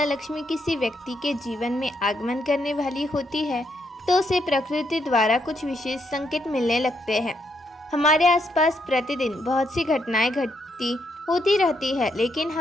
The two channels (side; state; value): both; normal; correlation 0.76